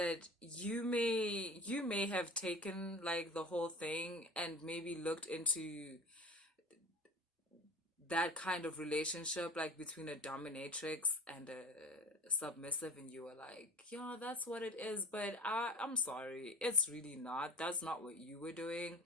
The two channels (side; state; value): both; normal; correlation 0.39